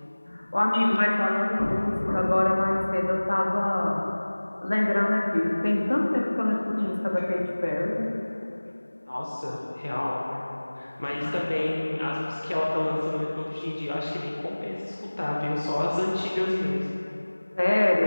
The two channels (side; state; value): both; inverted; correlation -1.00